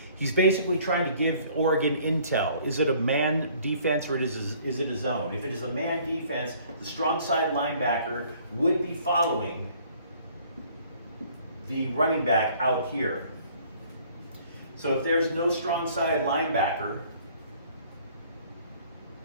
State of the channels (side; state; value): both; inverted; correlation -0.57